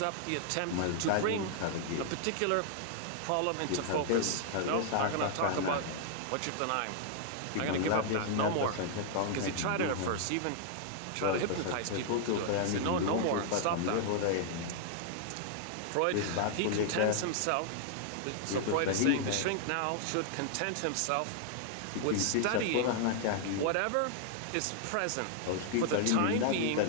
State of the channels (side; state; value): both; different; correlation -0.01